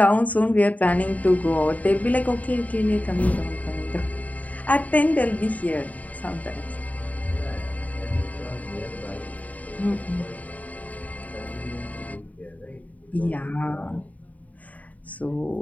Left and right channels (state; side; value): late; right; 0.072 ms